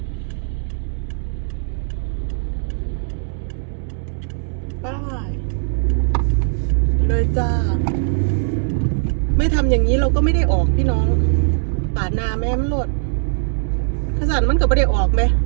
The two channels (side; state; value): left; silent; digital silence